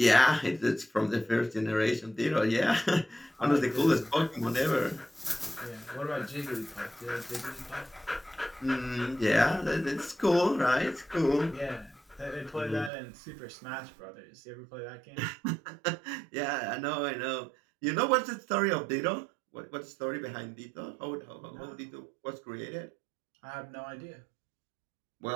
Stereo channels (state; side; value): drops out; left; at 12.9 s